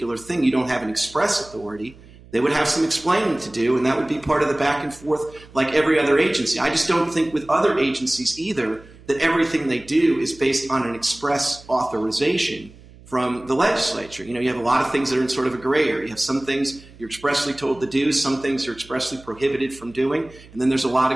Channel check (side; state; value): right; noise; hum, 22 dB below the sound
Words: thing? You don't have an express authority. They would have some explaining to do, and that would be part of the back and forth like every other agency. I just don't think with other agencies either that everything they do is based on an express authorization from the legislature. You have a lot of things that are in sort of a gray area. You have some things you're expressly told to do, some things you're expressly prohibited from doing, and then there's a lot